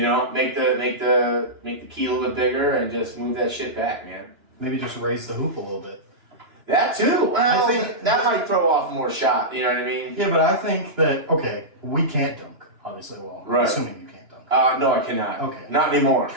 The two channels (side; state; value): left; late; 2.9 ms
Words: Make the key a little bit bigger and just move that shit back, man. Maybe just raise the hoop a little bit. That too. Well, I think that might throw off more shot. You know what I mean? Yeah, but I think that we can't dunk. Obviously, right. Assuming you can't dunk. No, I cannot. Okay. Not anymore.